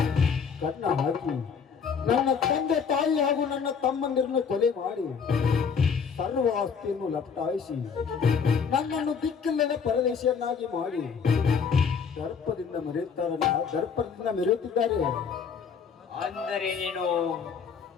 ಕನ್ನ ಹಾಕಿ ನನ್ನ ತಂದೆ ತಾಯಿ ಹಾಗೂ ನನ್ನ ತಮ್ಮಂದಿರನ್ನು ಕೊಲೆ ಮಾಡಿ ಸರ್ವ ಆಸ್ತಿಯನ್ನು ಲಪಟಾಯಿಸಿ ನನ್ನನ್ನು ದಿಕ್ಕಿಲ್ಲದ ಪರದೇಶಿಯನ್ನಾಗಿ ಮಾಡಿ ದರ್ಪದಿಂದ ಮೆರೆಯುತ್ತಿದ್ದಾರೆ. ಅಂದರೆ ನೀನು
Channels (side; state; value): right; quieter; 6.3 dB